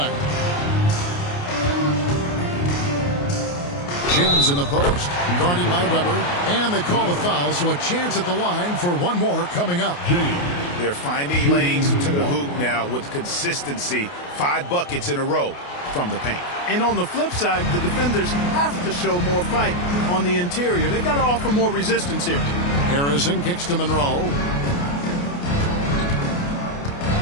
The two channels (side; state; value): right; late; 28 ms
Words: James in the post, guarded by Weber, and they call the foul, so a chance at the line for one more coming up. They're finding lanes to the hoop now with consistency. 5 buckets in a row from the paint. And on the flip side, the defenders have to show more fight on the interior. They've got to offer more resistance here. Harrison kicks to Monroe.